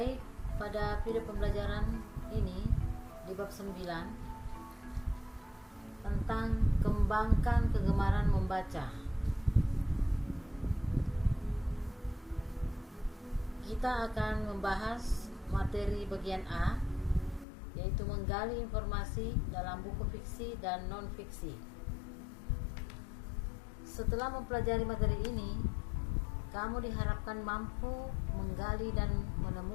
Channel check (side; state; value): right; drops out; at 17.4 s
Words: pada video pembelajaran ini di bab 9 tentang kembangkan kegemaran membaca. Kita akan membahas materi bagian A, yaitu menggali informasi dalam buku fiksi dan non-fiksi. Setelah mempelajari materi ini, kamu diharapkan mampu menggali dan